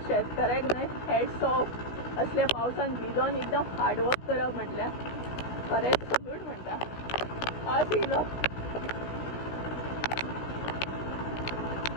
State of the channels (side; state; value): right; late; 16 ms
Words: शेतकऱ्याक न्हय हॅट्स ऑफ. असल्या पावसान भिजोन एकदम हार्डवर्क करप म्हटल्यार खरेंच सल्यूट म्हणटा. पावस येयलो,